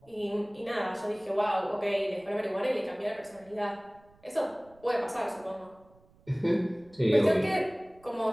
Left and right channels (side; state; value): right; noise; rumble, 29 dB below the sound